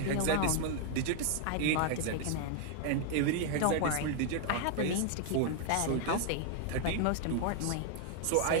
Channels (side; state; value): both; different; correlation 0.00